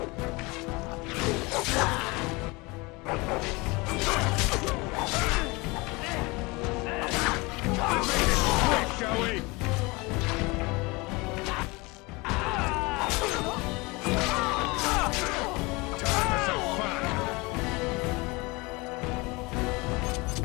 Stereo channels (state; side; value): quieter; right; 25.1 dB